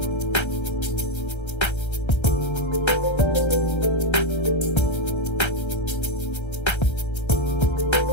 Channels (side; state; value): right; late; 1.3 ms